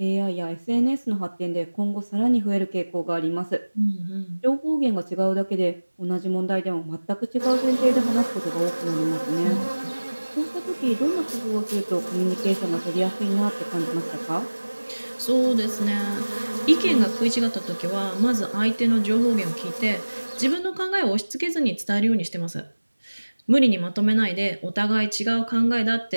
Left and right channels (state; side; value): inverted; both; correlation -1.00